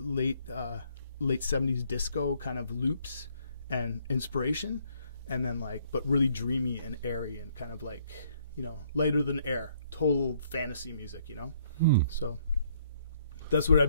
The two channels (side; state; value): both; inverted; correlation -0.66